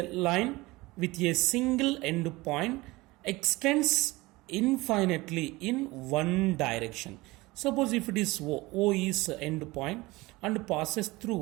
line with a single end point, extends infinitely in one direction. Suppose if it is O is end point and passes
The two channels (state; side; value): quieter; left; 21.3 dB